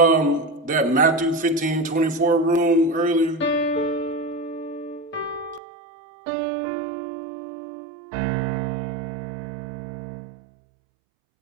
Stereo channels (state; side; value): drops out; left; at 5.6 s